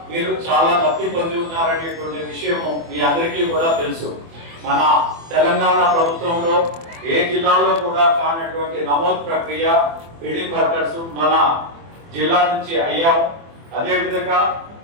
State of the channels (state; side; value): late; left; 24 ms